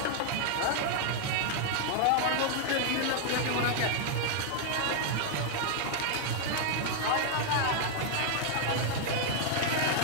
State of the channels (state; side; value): different; both; correlation 0.00